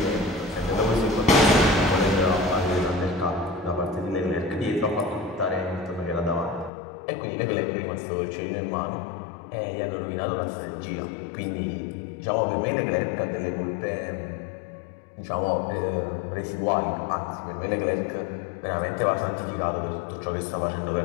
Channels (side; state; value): right; drops out; at 6.7 s